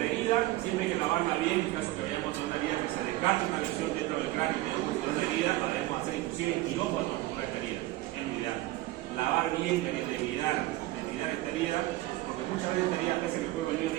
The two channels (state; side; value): quieter; left; 17.5 dB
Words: herida, siempre hay que lavarla bien en caso que vayamos a una herida que se descarte una lesión dentro del cráneo y tengamos una herida, la debemos hacer inclusive en quirófano por esta herida. Es lo ideal. Lavar bien la herida, debilitar esta herida, porque muchas veces esta herida pese que el cuerpo es